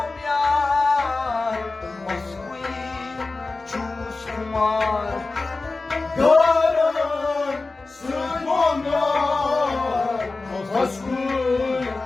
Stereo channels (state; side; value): quieter; right; 3.6 dB